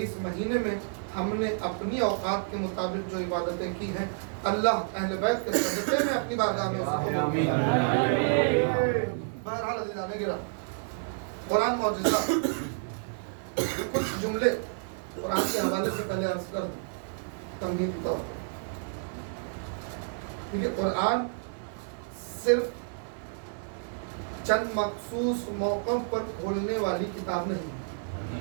اس مہینے میں ہم نے اپنی اوقات کے مطابق جو عبادتیں کی ہیں اللہ اہل بیت کے صدقے میں اپنی بارگاہ میں اسے قبول فرمائے. بہرحال عزیزان گرامی، قرآن معجزہ. کچھ جملے قرآن کے حوالے سے پہلے عرض کر دوں تمہید کے طور پر. کیونکہ قرآن صرف چند مخصوص موقعوں پر کھولنے والی کتاب نہیں ہے.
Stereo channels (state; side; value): silent; left; 58 dB below the other